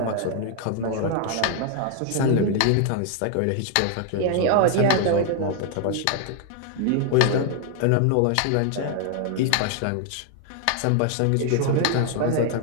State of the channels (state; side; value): different; both; correlation 0.00